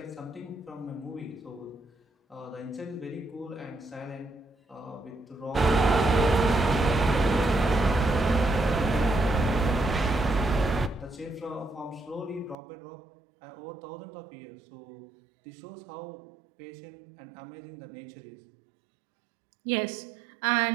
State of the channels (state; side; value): drops out; left; at 12.6 s